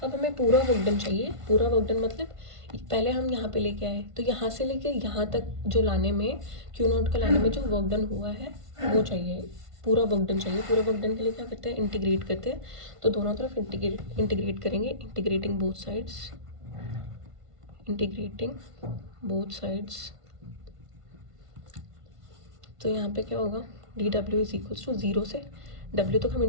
अब हमें पूरा वर्क डन चाहिए, पूरा वर्क डन मतलब पहले हम यहाँ पे लेके आए, तो यहाँ से लेके यहाँ तक जो लाने में, Q0 का लाने में जो वर्क डन हुआ है वो चाहिए, पूरा वर्क डन चाहिए। पूरा वर्क डन के लिए क्या करते हैं, इंटीग्रेट करते हैं, तो दोनों तरफ इंटीग्रेट करेंगे, integrating both sides, integrating both sides. तो यहाँ पे क्या होगा, D W is equals to 0 से W तक हम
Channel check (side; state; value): left; late; 1.5 ms